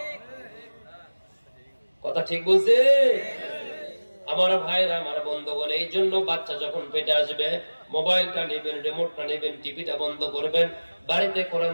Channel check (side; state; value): both; inverted; correlation -1.00